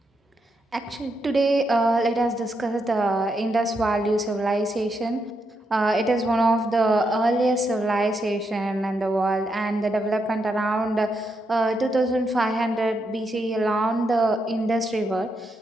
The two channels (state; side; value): normal; both; correlation 0.81